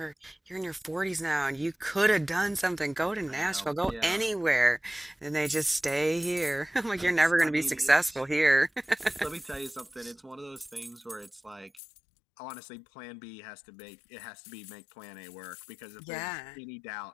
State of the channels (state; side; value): drops out; right; at 11.7 s